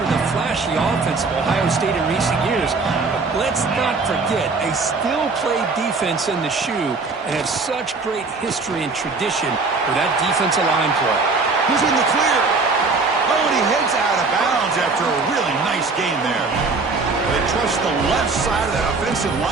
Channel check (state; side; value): quieter; left; 4.0 dB